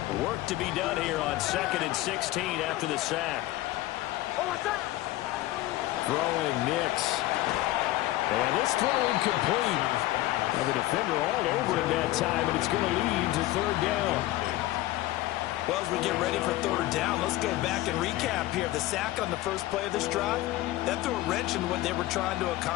Work to be done here on 2nd and 16 after the sack. Throwing Nix. And this throw incomplete. Well, the defender all over him that time, and it's going to lead to 3rd down. Well, as we get ready for 3rd down, let's go back and recap here. The sack on the first play of this drive, that threw a wrench in what they were trying to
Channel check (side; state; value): right; quieter; 16.7 dB